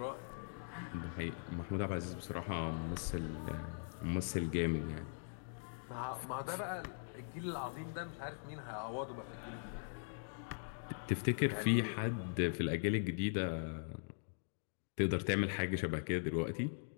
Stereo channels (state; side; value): silent; right; digital silence